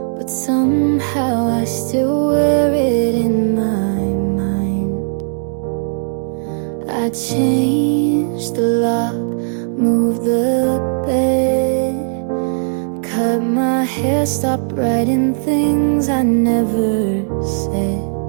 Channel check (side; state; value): left; silent; digital silence